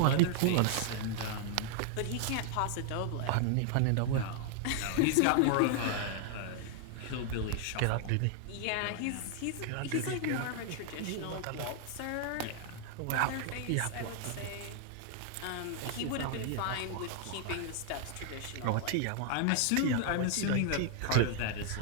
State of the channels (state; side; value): different; both; correlation 0.00